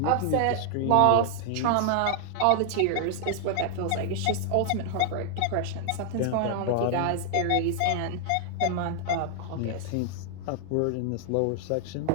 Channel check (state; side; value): different; both; correlation 0.00